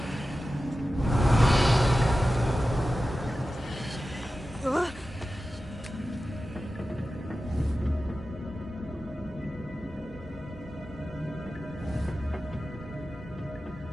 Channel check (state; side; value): normal; both; correlation 0.94